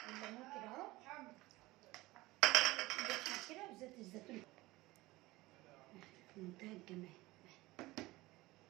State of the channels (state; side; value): quieter; left; 19.7 dB